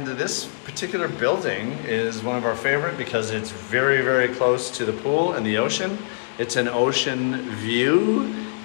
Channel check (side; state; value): right; silent; digital silence